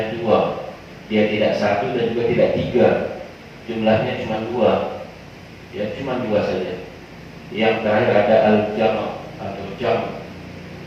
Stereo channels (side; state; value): both; identical; correlation 1.00